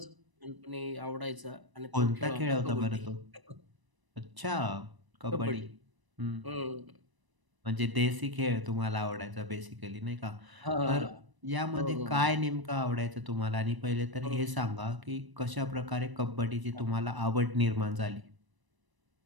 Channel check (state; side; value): late; left; 1.0 ms